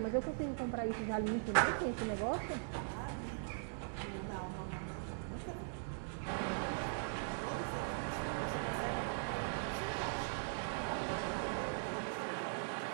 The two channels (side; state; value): left; silent; digital silence